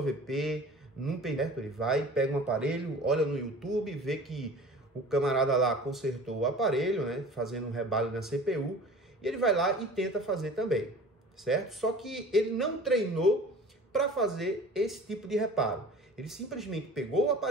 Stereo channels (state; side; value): normal; both; correlation 0.42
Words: num perto. Ele vai, pega um aparelho, olha no YouTube, vê que o camarada lá consertou o aparelho, né, fazendo um rebalem na CPU, e ele vai lá e tenta fazer também, certo? Só que ele não treinou para fazer esse tipo de reparo. Ele simplesmente pegou o